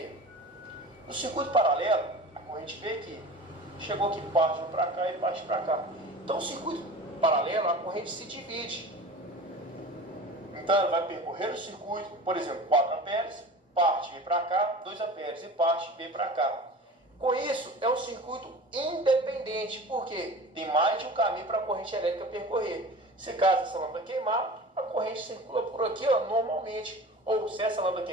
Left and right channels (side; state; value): both; normal; correlation 0.37